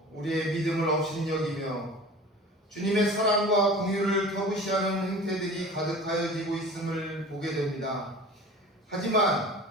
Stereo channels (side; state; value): both; normal; correlation 0.39